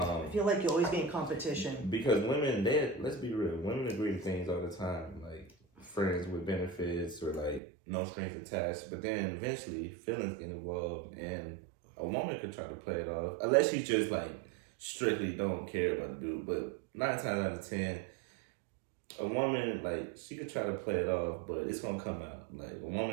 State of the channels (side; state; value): left; drops out; at 7.6 s